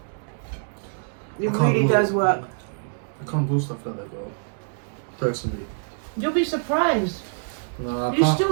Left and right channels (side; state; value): left; silent; digital silence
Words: It really does work. I can't do stuff like that though, personally. You'll be surprised. No, I You can't.